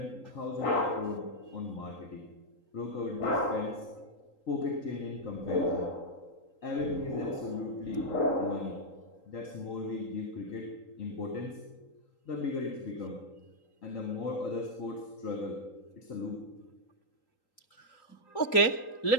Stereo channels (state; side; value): late; right; 3.8 ms